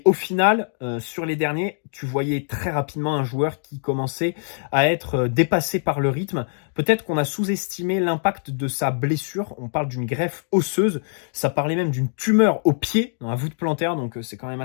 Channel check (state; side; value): silent; right; digital silence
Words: au final, sur les derniers, tu voyais très rapidement un joueur qui commençait à être dépassé par le rythme. Peut-être qu'on a sous-estimé l'impact de sa blessure. On parle d'une greffe osseuse. Ça parlait même d'une tumeur au pied, dans la voûte plantaire, donc c'est quand même